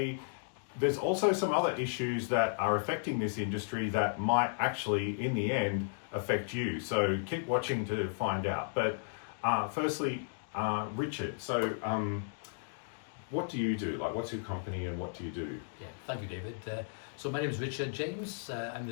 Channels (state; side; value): silent; right; digital silence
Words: there's also some other issues that are affecting this industry that might actually, in the end, affect you. So keep watching to find out. But firstly, Richard, so what do you do? Like, what's your company and what do you do? Yeah, thank you, David. So my name is Richard James. I'm